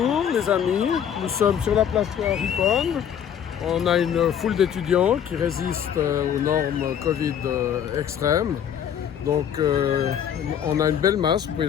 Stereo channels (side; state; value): right; quieter; 8.9 dB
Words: les amis, nous sommes sur la place Ripon. On a une foule d'étudiants qui résistent aux normes Covid extrêmes. Donc on a une belle masse, vous pouvez